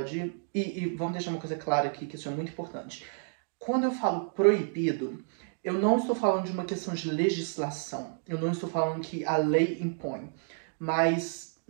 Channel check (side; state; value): left; silent; digital silence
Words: E vamos deixar uma coisa clara aqui, que isso é muito importante. Quando eu falo proibido, eu não estou falando de uma questão de legislação. Eu não estou falando que a lei impõe. Mas